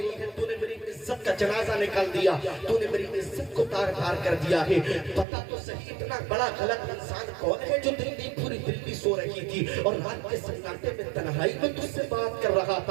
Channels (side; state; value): left; drops out; at 5.2 s